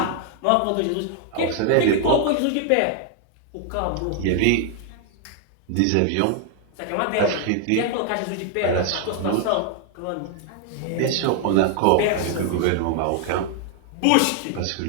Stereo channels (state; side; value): different; both; correlation 0.00